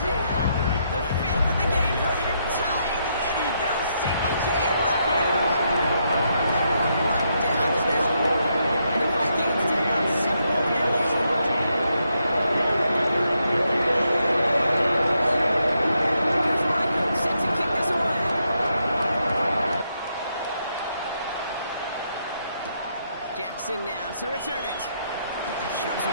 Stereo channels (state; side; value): inverted; both; correlation -0.79